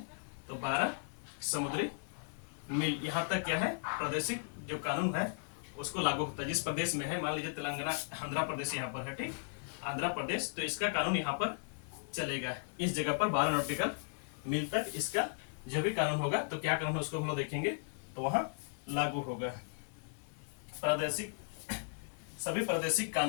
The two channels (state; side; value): silent; right; 54 dB below the other